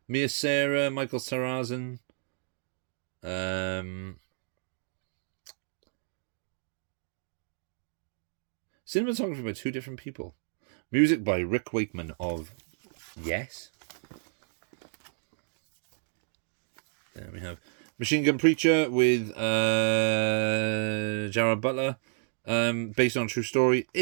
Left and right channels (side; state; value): left; silent; digital silence